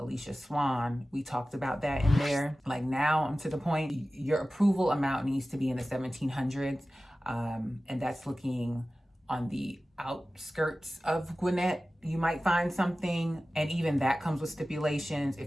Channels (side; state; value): both; normal; correlation 0.96